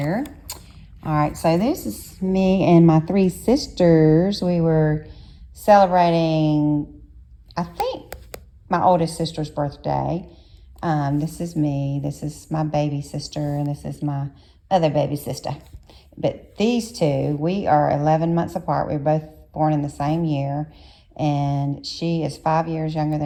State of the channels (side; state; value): both; identical; correlation 1.00